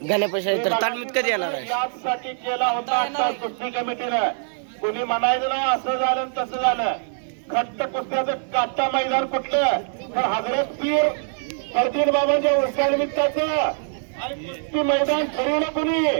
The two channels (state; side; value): silent; left; 59 dB below the other